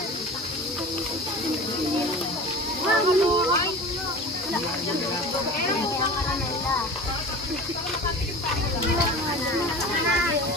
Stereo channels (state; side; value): normal; both; correlation 0.36